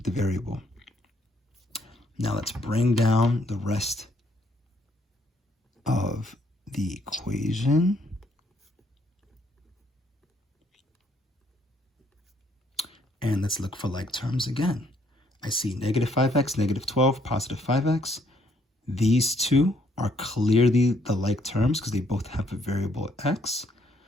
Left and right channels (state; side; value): normal; both; correlation 0.68